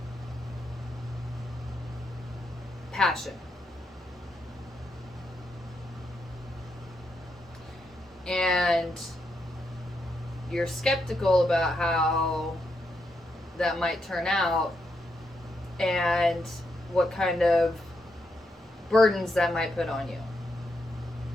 passion. And you're skeptical about how that might turn out and what kind of burdens that might put on you.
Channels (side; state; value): both; normal; correlation 0.81